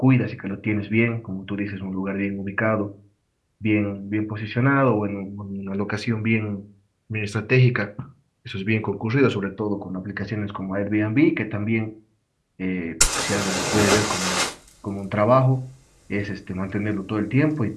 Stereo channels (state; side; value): identical; both; correlation 1.00